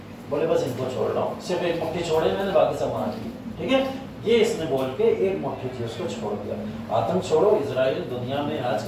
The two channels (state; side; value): identical; both; correlation 1.00